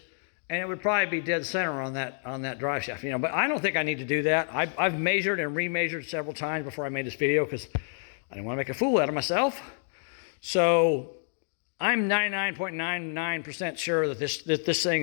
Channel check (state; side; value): silent; right; 56 dB below the other